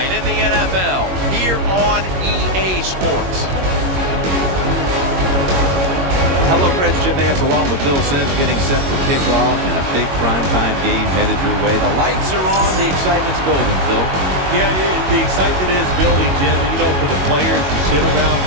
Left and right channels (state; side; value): late; left; 22 ms